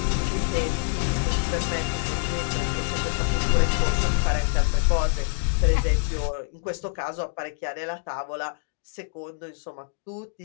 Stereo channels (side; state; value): right; silent; digital silence